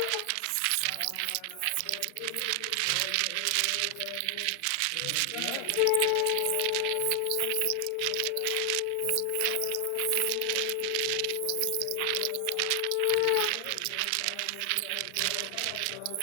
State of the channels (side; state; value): both; different; correlation 0.00